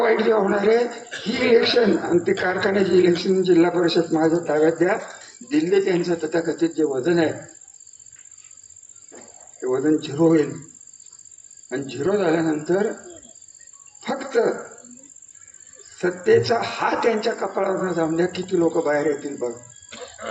जे होणार आहे ही इलेक्शन, आणि ते कारखान्याची इलेक्शन जिल्हा परिषद माझ्या ताब्यात द्या. दिल्ली त्यांचं तथाकथित जे वजन आहे ते वजन 0 होईल, आणि 0 झाल्यानंतर फक्त सत्तेचा हात त्यांच्या कपाळावर जाऊन द्या. किती लोक बाहेर येतील बघ,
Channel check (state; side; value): identical; both; correlation 1.00